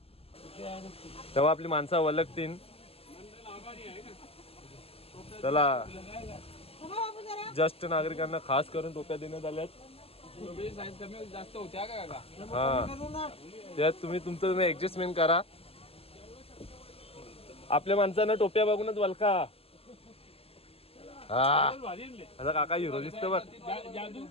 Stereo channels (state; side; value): late; right; 0.28 ms